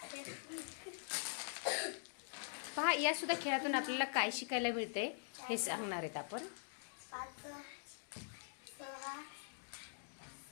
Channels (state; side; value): silent; right; digital silence